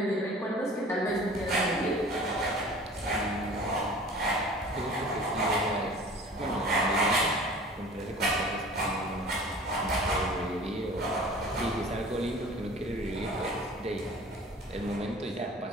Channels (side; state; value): both; normal; correlation 0.43